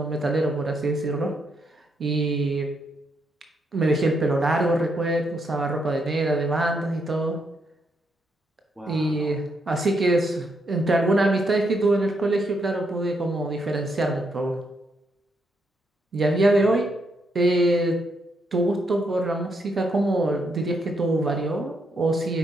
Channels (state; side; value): normal; both; correlation 0.78